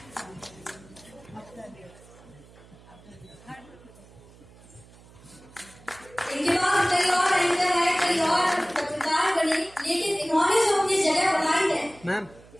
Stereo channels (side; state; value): right; noise; hum, 24 dB below the sound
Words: इनके बाद कई और एंकर है, कई और पत्रकार बने, लेकिन इन्होंने जो अपनी जगह बनाई है मैम